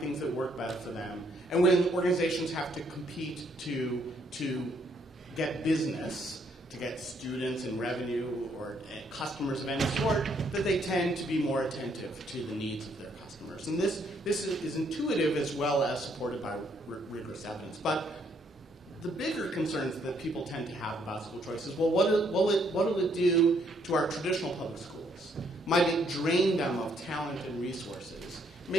that work better for them. And when organizations have to compete to get business, to get students and revenue or customers of any sort, that they tend to be more attentive to the needs of their customers. And this is intuitive as well as supported by rigorous evidence. But the bigger concerns that people tend to have about school choice is, well, what will it do to our traditional public schools? Might it drain them of talent and resources,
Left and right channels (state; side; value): normal; both; correlation 0.70